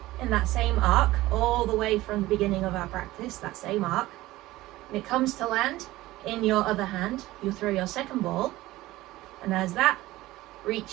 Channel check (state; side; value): quieter; left; 17.5 dB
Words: in that same arc, all the way from the beginning of our practice, that same arc, and it comes to land in your other hand, you throw your second ball, and as that